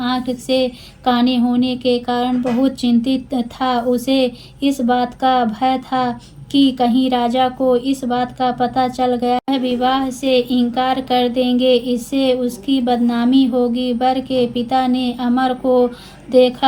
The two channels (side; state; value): both; identical; correlation 1.00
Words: से काने होने के कारण बहुत चिंतित था। उसे इस बात का भय था कि कहीं राजा को इस बात का पता चल गया, वह विवाह से इनकार कर देंगे, इससे उसकी बदनामी होगी। वर के पिता ने अमर को